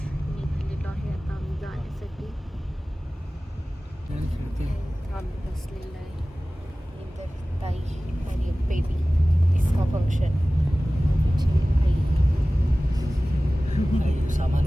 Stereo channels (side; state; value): both; normal; correlation 0.97